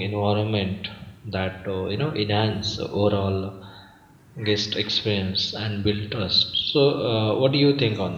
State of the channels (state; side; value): identical; both; correlation 1.00